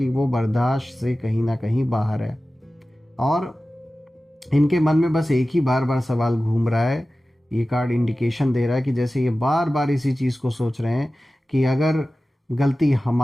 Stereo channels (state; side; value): normal; both; correlation 0.96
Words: वो बर्दाश्त से कहीं ना कहीं बाहर है, और इनके मन में बस एक ही बार बार सवाल घूम रहा है। ये कार्ड इंडिकेशन दे रहा है कि जैसे ये बार बार इसी चीज़ को सोच रहे हैं कि अगर गलती